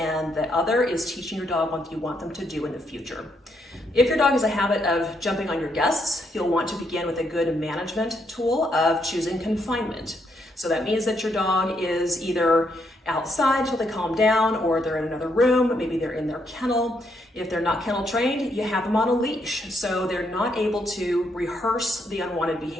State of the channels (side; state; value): both; normal; correlation 0.76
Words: the other is teaching your dog what you want them to do in the future. If your dog has a habit of jumping on your guests, you'll want to begin with a good management tool of choosing confinement. So that means that your dog is either outside until they calm down, or they're in another room, maybe they're in their kennel. If they're not kennel trained, you have them on a leash, so they're not able to rehearse the unwanted